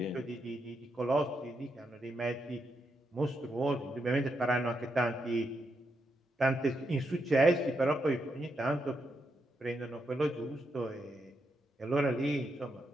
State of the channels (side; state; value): both; normal; correlation 0.82